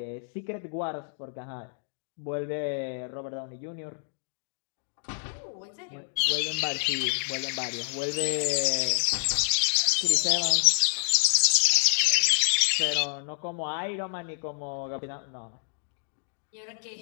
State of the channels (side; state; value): right; silent; digital silence